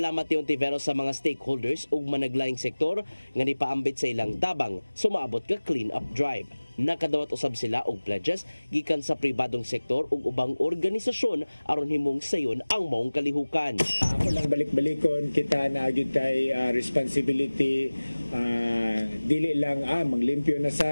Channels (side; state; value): both; inverted; correlation -1.00